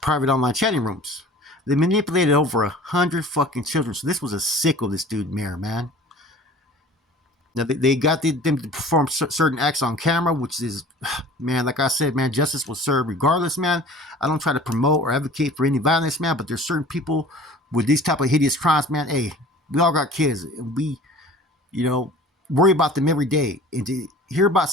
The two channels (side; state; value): both; normal; correlation 0.45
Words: online chatting rooms. They manipulated over 100 fucking children. So this was a sicko, this dude, Mayer, man. Now, they got them to perform certain acts on camera, which is, man, like I said, man, justice was served regardless, man. I don't try to promote or advocate for any violence, man, but there's certain people with these type of hideous crimes, man. Hey, we all got kids, and we, worry about them every day. And to hear about